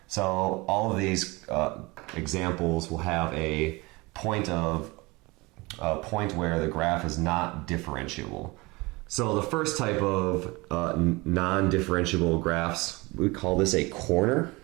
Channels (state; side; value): quieter; left; 24.0 dB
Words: So all of these examples will have a point where the graph is not differentiable. So the first type of non-differentiable graphs, we call this a corner.